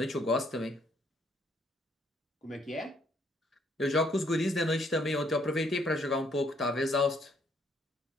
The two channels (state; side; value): normal; both; correlation 0.68